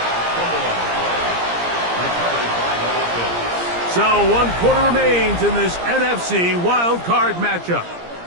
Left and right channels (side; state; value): left; late; 17 ms